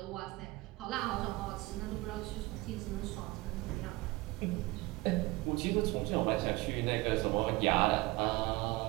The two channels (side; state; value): left; quieter; 21.1 dB